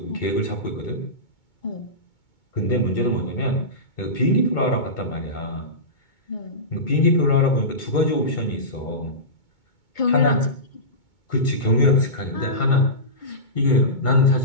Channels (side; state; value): right; late; 2.2 ms